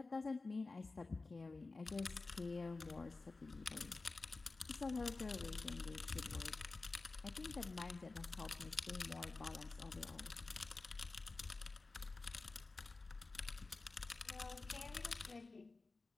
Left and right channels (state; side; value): quieter; right; 3.6 dB